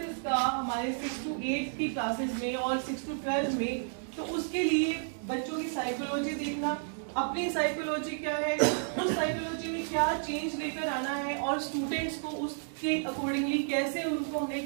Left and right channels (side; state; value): left; silent; digital silence